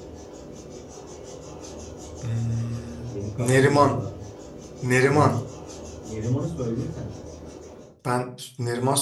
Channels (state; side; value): identical; both; correlation 1.00